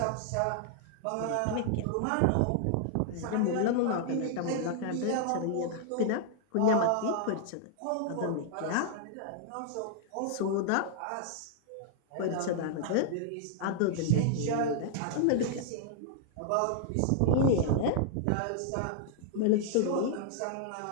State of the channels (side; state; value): both; different; correlation -0.01